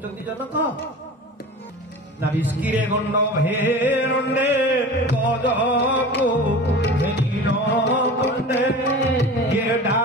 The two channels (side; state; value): both; normal; correlation 0.35